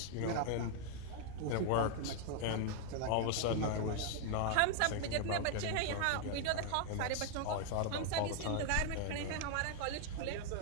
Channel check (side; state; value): both; different; correlation 0.00